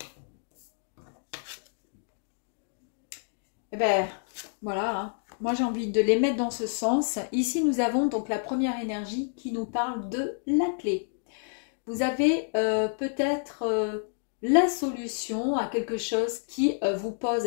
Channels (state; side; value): silent; right; digital silence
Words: Eh ben, voilà, hein. Moi j'ai envie de les mettre dans ce sens. Ici, nous avons donc la première énergie qui nous parle de la clé. Vous avez peut-être la solution à quelque chose qui vous pose